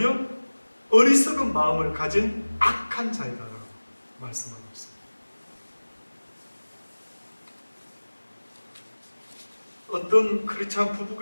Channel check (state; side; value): inverted; both; correlation -1.00